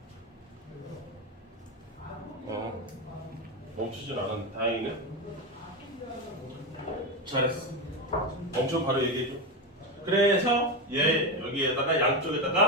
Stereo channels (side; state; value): both; normal; correlation 0.15